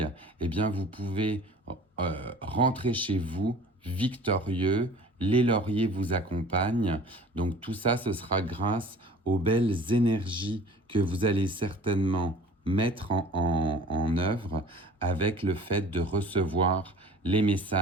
eh bien vous pouvez rentrer chez vous victorieux, les lauriers vous accompagnent. Donc tout ça, ce sera grâce aux belles énergies que vous allez certainement mettre en œuvre avec le fait de recevoir les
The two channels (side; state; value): both; normal; correlation 0.45